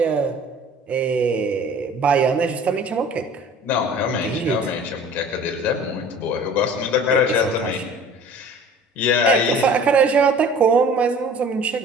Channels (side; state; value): both; normal; correlation 0.46